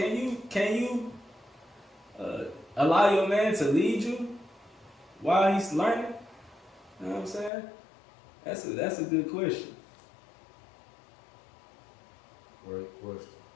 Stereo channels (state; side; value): drops out; right; at 7.5 s